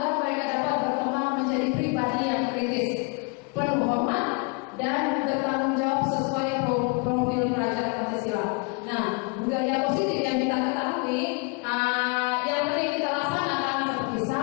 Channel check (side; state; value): right; quieter; 31.3 dB